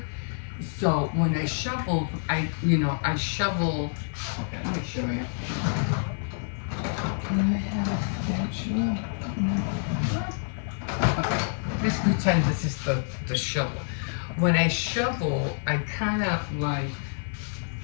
So when I shovel, I shovel. Okay, let me show you. Can I have a spatula? Okay, let's pretend this is the shovel. When I shovel, I kind of like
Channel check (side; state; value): right; silent; 60 dB below the other